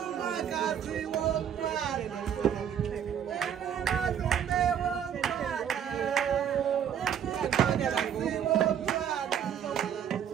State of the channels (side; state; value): left; quieter; 8.9 dB